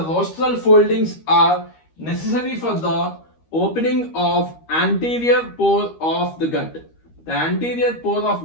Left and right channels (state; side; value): late; right; 13 ms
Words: rostral foldings are necessary for the opening of anterior pore of the gut. The anterior pore